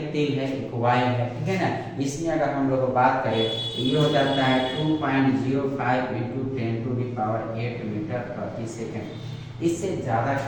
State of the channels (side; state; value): both; identical; correlation 1.00